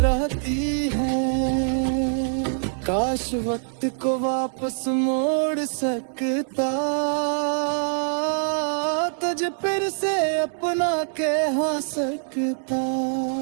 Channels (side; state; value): left; silent; digital silence